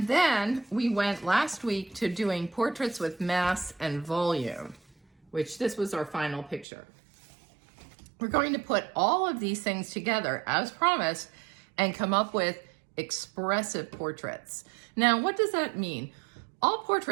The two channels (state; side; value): drops out; left; at 6.7 s